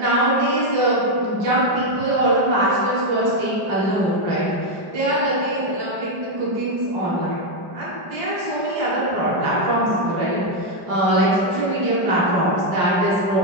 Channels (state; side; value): late; left; 5.1 ms